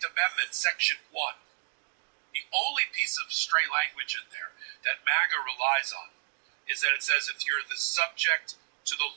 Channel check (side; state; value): left; silent; digital silence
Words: Section 1, the only piece of stray language in there that MAGA relies on is that it says if you're the subject to the